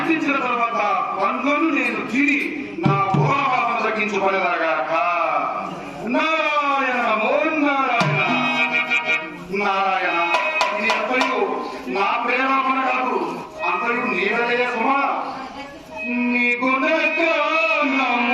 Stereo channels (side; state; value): both; identical; correlation 1.00